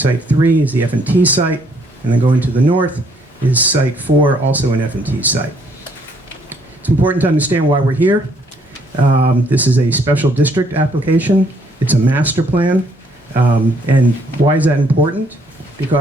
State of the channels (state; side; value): normal; both; correlation 0.67